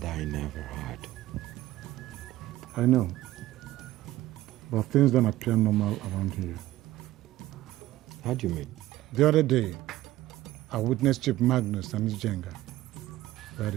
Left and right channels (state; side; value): quieter; left; 15.8 dB